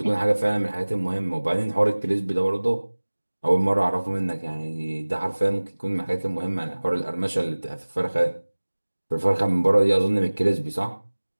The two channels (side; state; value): both; inverted; correlation -1.00